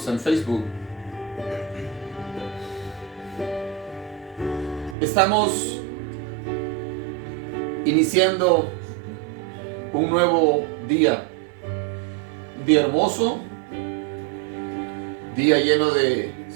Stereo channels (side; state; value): left; drops out; at 5.0 s